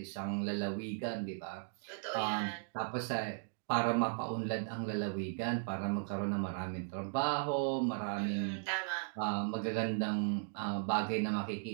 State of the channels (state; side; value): silent; left; digital silence